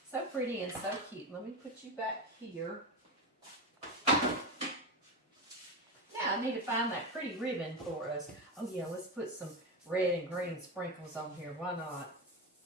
So pretty and so cute. Let me put you back here. Now I need to find that pretty ribbon for us. Oh yeah, let's put some red and green sprinkles on here. Why not?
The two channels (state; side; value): normal; both; correlation 0.17